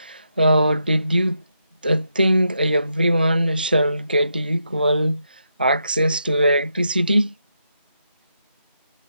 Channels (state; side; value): inverted; both; correlation -0.82